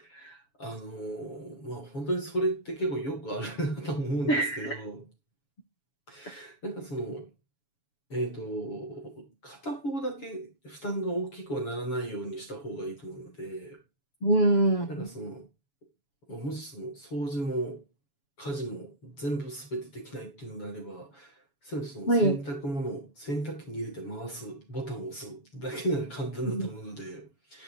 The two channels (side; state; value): right; late; 7.1 ms